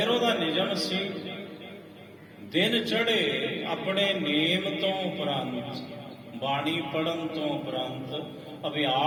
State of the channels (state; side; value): identical; both; correlation 1.00